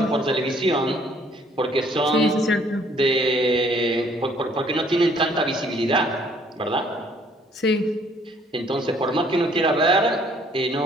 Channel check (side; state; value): both; normal; correlation 0.61